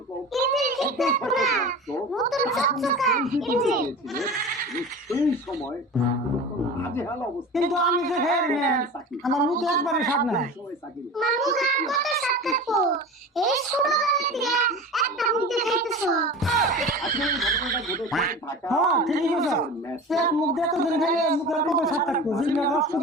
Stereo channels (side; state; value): both; normal; correlation 0.33